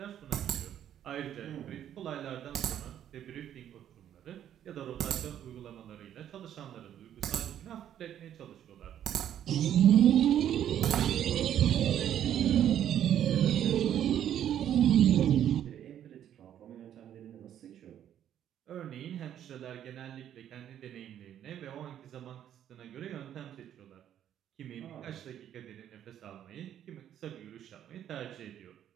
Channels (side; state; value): left; quieter; 10.5 dB